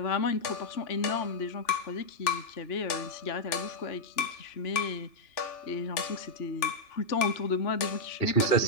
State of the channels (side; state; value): right; late; 2.9 ms